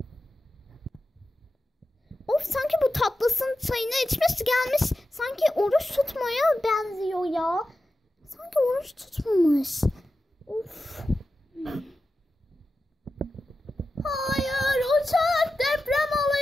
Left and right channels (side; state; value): both; normal; correlation 0.92